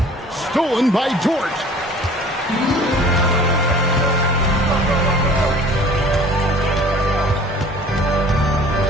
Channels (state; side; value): normal; both; correlation 0.48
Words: Stolen by Dort.